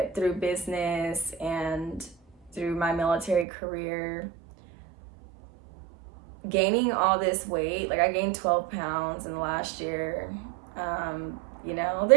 through business and through my military career, gaining all this weight. Like I gained 12 pounds in the last year. You know,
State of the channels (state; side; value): drops out; left; at 3.5 s